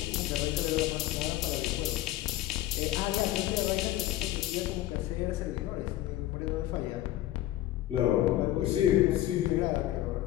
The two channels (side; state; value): right; quieter; 14.5 dB